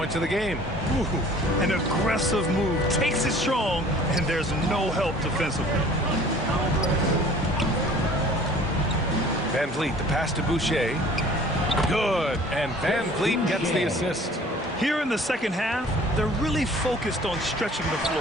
of the game. Ooh, an aggressive move. Takes it strong, and there's no help defensively. Van Vliet, the pass to Boucher. Good. And Van Vliet gets the assist. Here in the second half, they're really focused on stretching the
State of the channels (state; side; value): normal; both; correlation 0.50